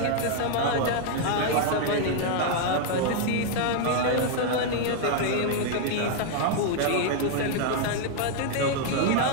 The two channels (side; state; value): both; different; correlation 0.00